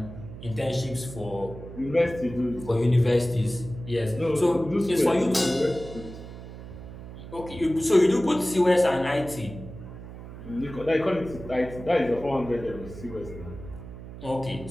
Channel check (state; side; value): noise; right; hum, 13 dB below the sound